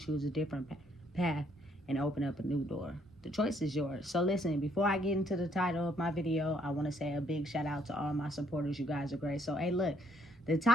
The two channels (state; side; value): normal; both; correlation 0.67